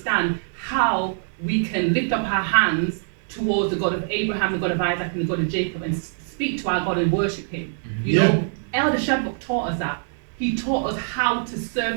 how we can lift up our hands towards the God of Abraham, the God of Isaac, and the God of Jacob, and speak to our God and worship him. You Yeah. know, Elder Shadrach taught us that. He taught us how to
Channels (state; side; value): silent; left; digital silence